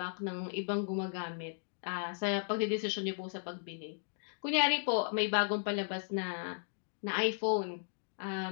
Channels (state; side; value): silent; right; digital silence